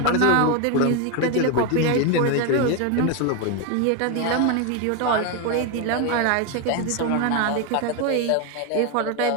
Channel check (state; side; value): different; both; correlation 0.01